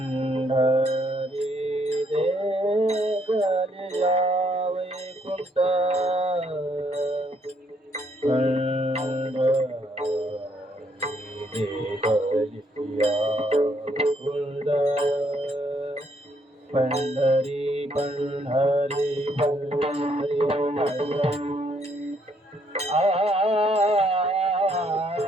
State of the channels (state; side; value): normal; both; correlation 0.70